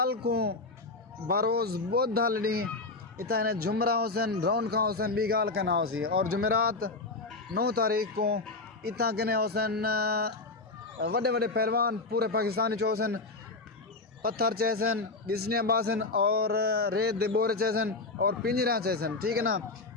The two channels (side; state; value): right; quieter; 3.5 dB